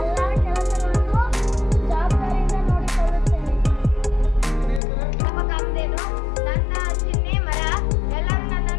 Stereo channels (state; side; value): drops out; right; at 4.8 s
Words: ಕೆಲಸಗಳನ್ನು ಜವಾಬ್ದಾರಿಯಿಂದ ನೋಡಿಕೊಳ್ಳುತ್ತೇನೆ. ಕಾಮಧೇನು ನನ್ನ ಚಿಹ್ನೆ ಮರ. ಎಲ್ಲರೂ